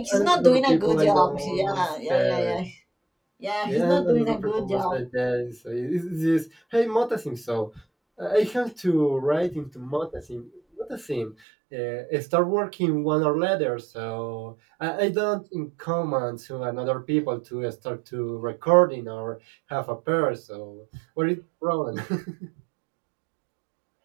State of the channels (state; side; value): drops out; left; at 11.4 s